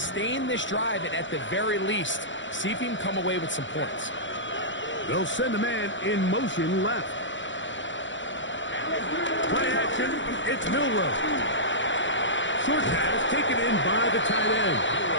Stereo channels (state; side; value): late; right; 0.54 ms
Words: this drive and at the very least, see if you can come away with some points. They'll send a man in motion left. Play action, it's Milroe. Short pass taken in by the tight end.